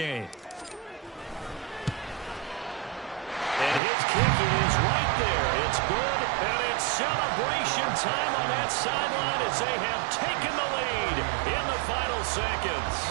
And his kick is right there. It's good, and it's celebration time on that sideline as they have taken the lead in the final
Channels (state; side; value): drops out; left; at 3.8 s